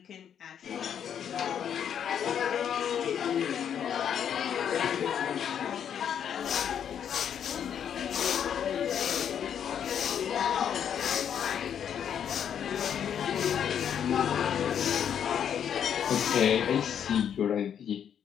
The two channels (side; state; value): right; quieter; 8.7 dB